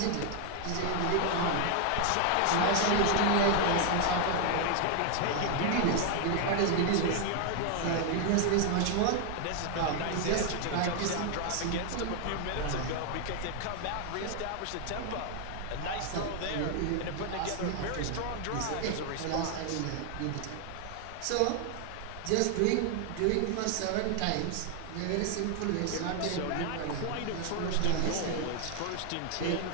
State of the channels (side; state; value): both; different; correlation 0.00